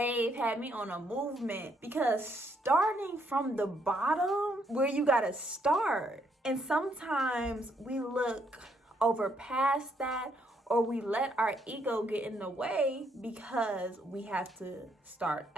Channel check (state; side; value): normal; both; correlation 0.73